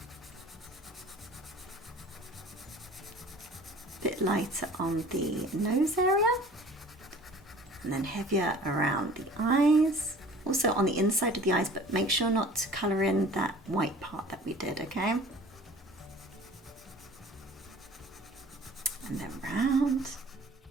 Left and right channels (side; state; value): both; normal; correlation 0.47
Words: A bit lighter on the nose area and then heavier around the eyes. also on the inside of the eyes, but make sure not to colour in that white part that we did, okay? And then round.